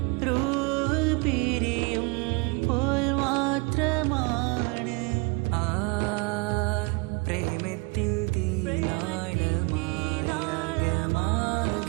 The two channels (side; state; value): left; quieter; 28.5 dB